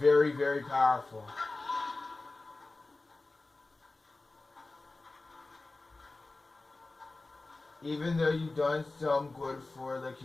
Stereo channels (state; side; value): quieter; right; 3.3 dB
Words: very powerful. Even though you've done some good for the